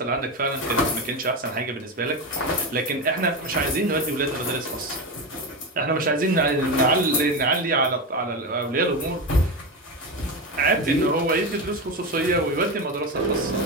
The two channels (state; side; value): normal; both; correlation 0.17